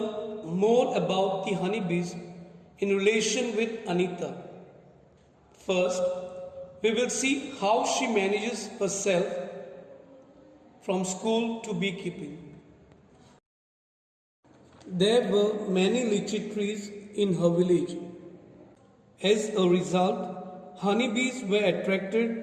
more about the honeybees in relation with Anita. First, we will see how she manages herself from school to beekeeping. There were many lychee trees in her village. As a result, honeybees were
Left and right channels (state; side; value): identical; both; correlation 1.00